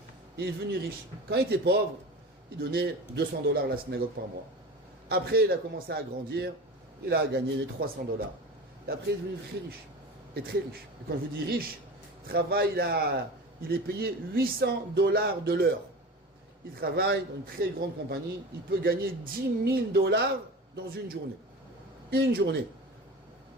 il est devenu riche. Quand il était pauvre, il donnait $200 à la synagogue par mois. Après, il a commencé à grandir, il a gagné les $300. Et après, il est devenu très riche. Et très riche. Et quand je vous dis riche, travail, il est payé $800 de l'heure. Il travaille dans une très grande compagnie, il peut gagner $10 000 dans une journée. Une journée.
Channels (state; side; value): normal; both; correlation 0.32